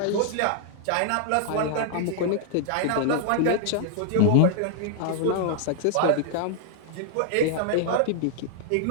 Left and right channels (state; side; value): different; both; correlation -0.01